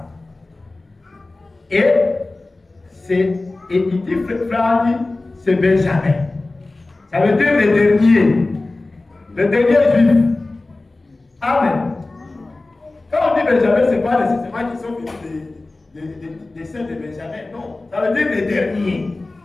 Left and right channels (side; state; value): right; quieter; 3.1 dB